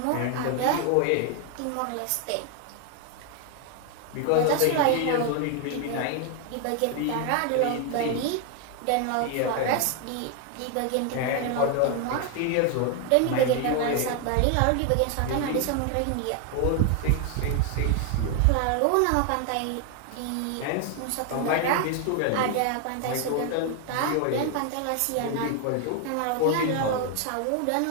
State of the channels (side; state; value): both; different; correlation 0.01